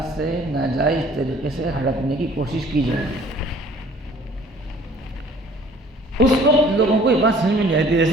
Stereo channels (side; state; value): both; normal; correlation 0.53